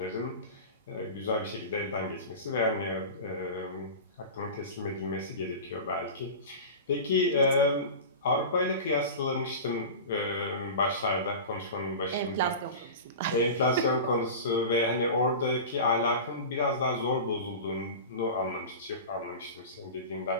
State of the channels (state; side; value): inverted; both; correlation -0.31